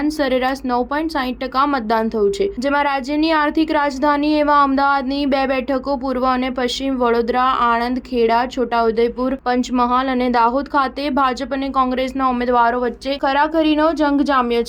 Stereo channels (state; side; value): identical; both; correlation 1.00